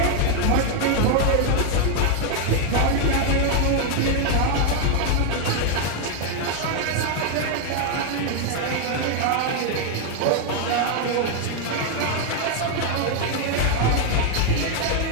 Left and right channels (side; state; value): both; different; correlation 0.01